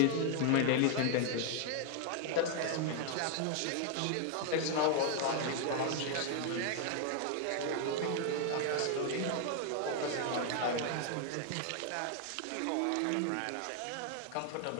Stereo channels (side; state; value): both; different; correlation 0.00